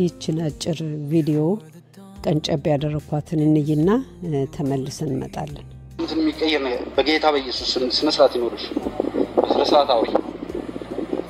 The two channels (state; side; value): identical; both; correlation 1.00